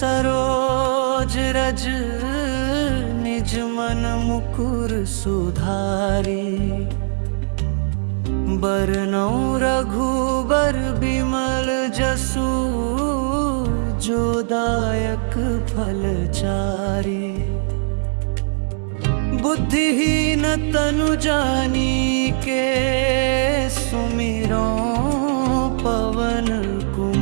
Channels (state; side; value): silent; left; digital silence